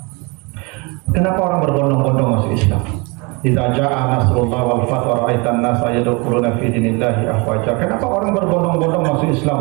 kenapa orang berbondong-bondong masuk Islam? Idza jaa nasrullah wal fath wa ra'aitan nasa yadkhuluna fi dinillahi afwaja. Kenapa orang berbondong-bondong masuk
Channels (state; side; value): quieter; left; 29.0 dB